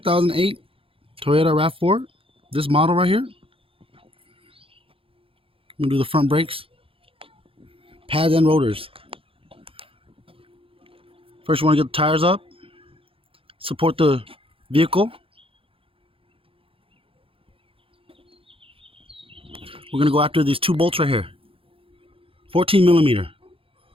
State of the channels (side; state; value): left; late; 0.27 ms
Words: Toyota RAV4. This model right here. I'm going to do the front brakes, pads and rotors. First you want to get the tires up, support the vehicle. We're going to go after these two bolts right here. 14 millimeter.